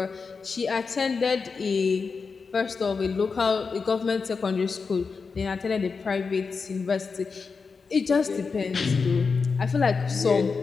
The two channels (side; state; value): right; quieter; 4.9 dB